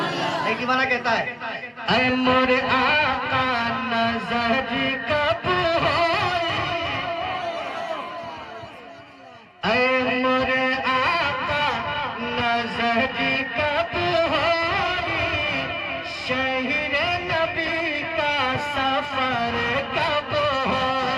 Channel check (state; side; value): identical; both; correlation 1.00